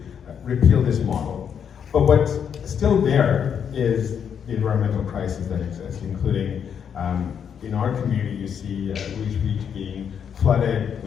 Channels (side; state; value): right; quieter; 7.8 dB